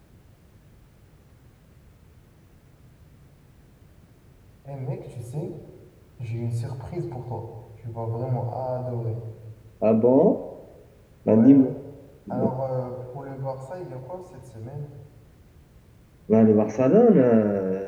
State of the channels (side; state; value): both; identical; correlation 1.00